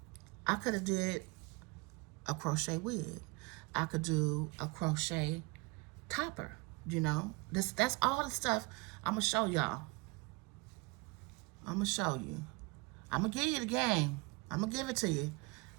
could have did a crochet wig. I could do a crochet topper. You know, that's all the stuff I'm gonna show y'all. I'm gonna show you. I'm gonna give you the game. I'm gonna give it to you.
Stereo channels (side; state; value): left; quieter; 27.2 dB